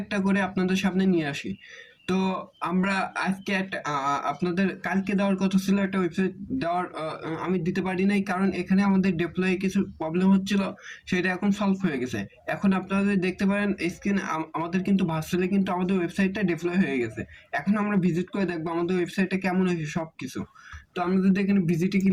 একটা করে আপনাদের সামনে নিয়ে আসি। তো আমরা আজকে একটা আপনাদের কালকে দেওয়ার কথা ছিল একটা ওয়েবসাইট দেওয়ার, আমি দিতে পারি নাই কারণ এখানে আমাদের ডিপ্লয়ে কিছু প্রবলেম হচ্ছিল। সেটা এখন সলভ হয়ে গেছে। এখন আপনারা যদি দেখতে পারেন স্ক্রিনে আমাদের কিন্তু ভার্চুয়ালি কিন্তু আমাদের ওয়েবসাইটটা ডিপ্লয় হয়ে গেছে। এখন আমরা ভিজিট করে দেখবো আমাদের ওয়েবসাইটটা কেমন হয়েছে সবকিছু। তো আমরা যদি এখানে ভিজিটে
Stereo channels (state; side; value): identical; both; correlation 1.00